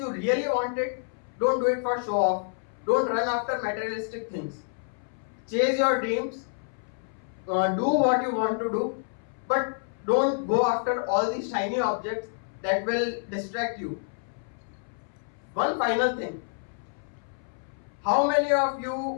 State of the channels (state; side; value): silent; right; 59 dB below the other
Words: really want it, don't do it for show off. Don't run after materialistic things. Chase your dreams, do what you want to do, but don't go after all these shiny objects that will distract you. One final thing. How many of